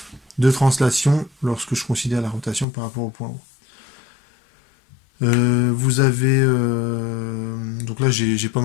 de translation lorsque je considère la rotation par rapport au point haut. Vous avez... donc là, j'ai pas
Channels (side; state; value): right; drops out; at 2.7 s